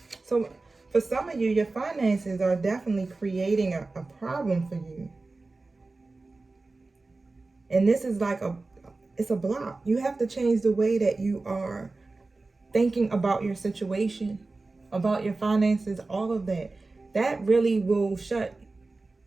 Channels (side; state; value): left; quieter; 3.5 dB